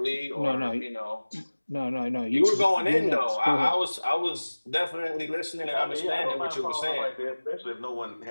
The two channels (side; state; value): both; inverted; correlation -1.00